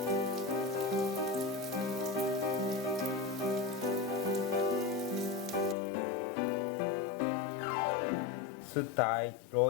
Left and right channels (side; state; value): right; drops out; at 5.8 s